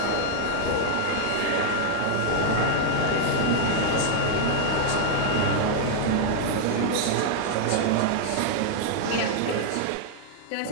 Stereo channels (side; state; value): both; different; correlation -0.01